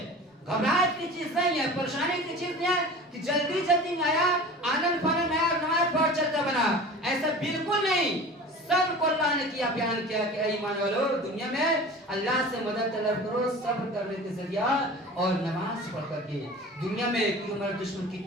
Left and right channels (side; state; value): both; normal; correlation 0.38